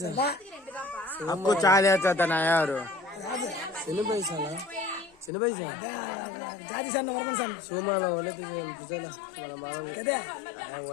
आपको चाल आता था ना यार। सुनो पैसा ला। सुनो पैसा। जाती सन नंबर सन सुमा ला वाले तो चला मला मारा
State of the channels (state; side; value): drops out; right; at 5.3 s